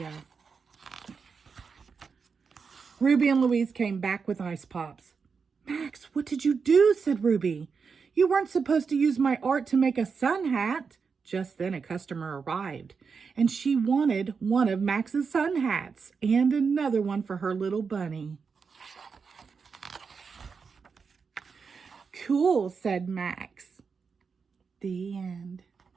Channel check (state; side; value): quieter; left; 5.5 dB